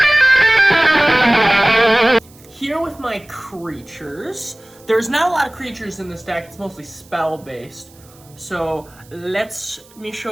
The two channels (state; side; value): noise; right; hiss, 27 dB below the sound